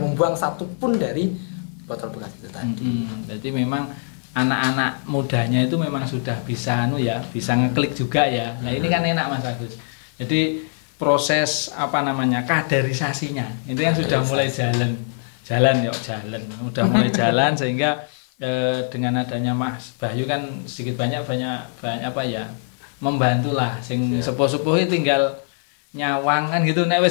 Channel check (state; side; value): silent; right; digital silence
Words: satupun dari botol bekas itu tadi. Jadi memang anak-anak mudanya itu memang sudah bisa bisa ngeklik juga ya. Nah, ini kan enak Mas Agus. Jadi proses kaderisasinya itu yang sudah mulai jalan, udah mulai jalan sehingga dengan adanya Mas Bahyu kan sedikit banyak membantulah sing sepuh-sepuh tinggal nyawang kan gitu, nek